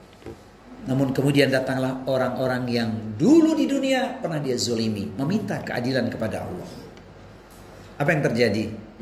Namun kemudian datanglah orang-orang yang dulu di dunia pernah dia zolimi, meminta keadilan kepada Allah. Apa yang terjadi?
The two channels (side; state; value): both; identical; correlation 1.00